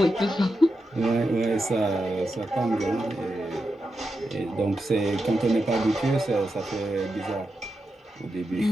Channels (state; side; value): normal; both; correlation 0.88